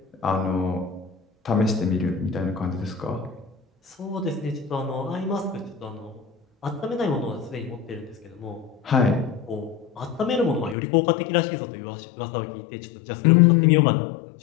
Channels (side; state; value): right; drops out; at 10.8 s